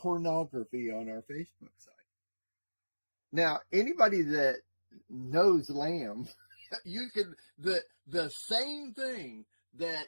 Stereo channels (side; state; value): both; inverted; correlation -1.00